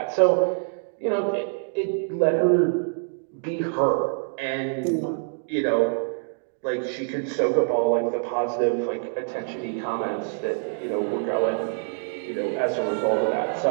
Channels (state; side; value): silent; left; digital silence